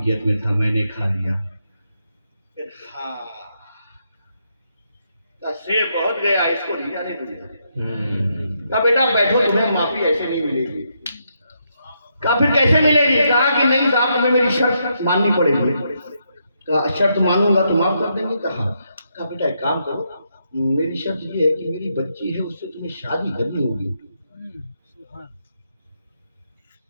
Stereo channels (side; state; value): both; inverted; correlation -0.79